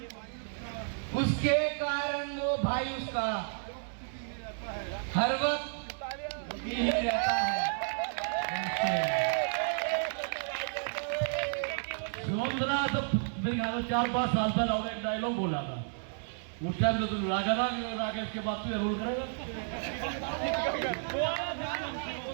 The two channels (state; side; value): silent; left; digital silence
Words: उसके कारण वो भाई उसका हर वक्त ही रहता है। सुमंत्रा तो मेरे ख्याल में 4-5 साल पहले और एक डायलॉग बोला था। उस टाइम तो तुम रागा था, राकेश के बाद तो रोल करेगा।